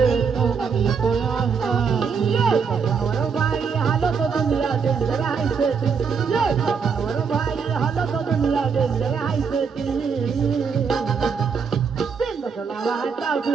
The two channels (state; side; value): quieter; left; 6.0 dB